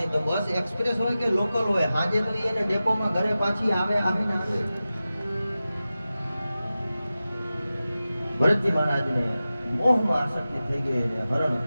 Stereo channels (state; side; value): inverted; both; correlation -0.95